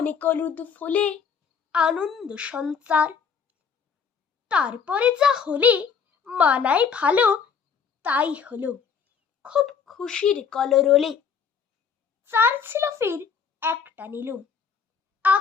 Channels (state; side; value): quieter; right; 6.5 dB